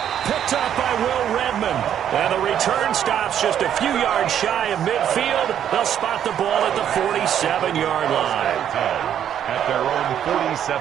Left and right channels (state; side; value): quieter; left; 9.7 dB